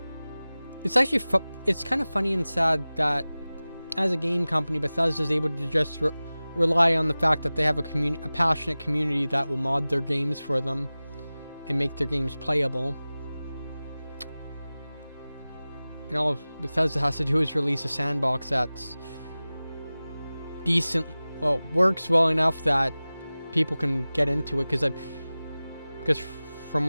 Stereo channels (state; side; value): inverted; both; correlation -0.98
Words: it's actually, it's kind of funny and sad that as a game company, Bethesda is able to just rely on the fact that they have a passionate community that will mod their games for them and make their games playable. And all Bethesda has to do is release a sandbox that's decent, well, works well enough that people can get into it, because from